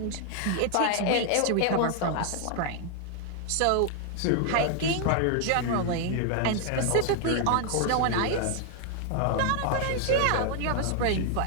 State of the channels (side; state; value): both; different; correlation 0.00